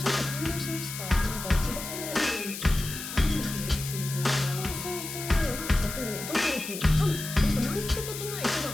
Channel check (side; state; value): left; noise; hiss, 8 dB below the sound